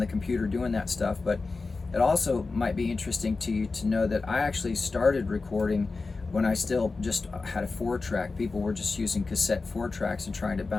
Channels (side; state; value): right; quieter; 4.0 dB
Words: computer doing that stuff, but it also might be interesting to you to know that I actually started recording when I still just had a 4-track. People were just using cassette 4-tracks and trying to